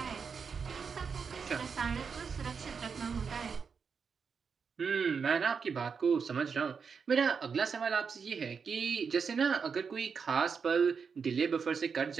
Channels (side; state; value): left; quieter; 5.9 dB